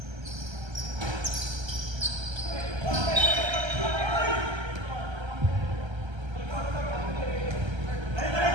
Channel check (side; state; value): left; late; 1.3 ms